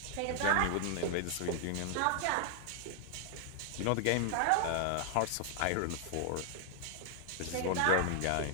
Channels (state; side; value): different; both; correlation 0.00